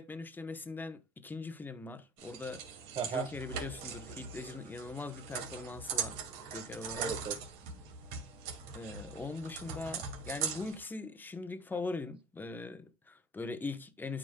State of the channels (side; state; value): both; normal; correlation 0.43